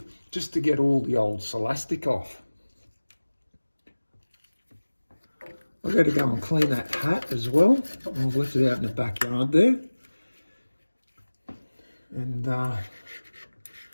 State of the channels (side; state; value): both; inverted; correlation -1.00